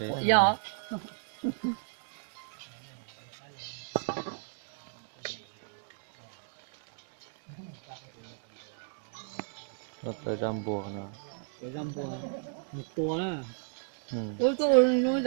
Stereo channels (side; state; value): left; silent; digital silence